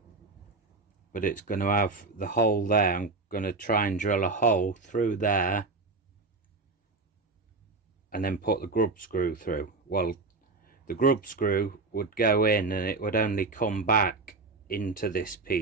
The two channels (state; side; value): quieter; left; 3.7 dB